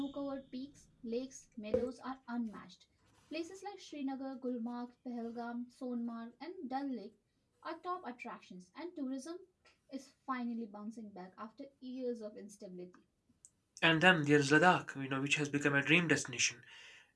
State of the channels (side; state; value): both; identical; correlation 1.00